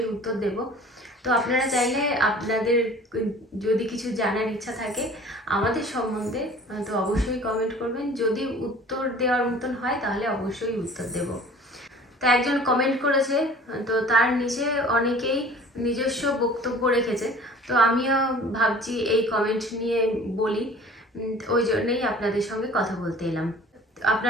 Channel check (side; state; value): both; normal; correlation 0.46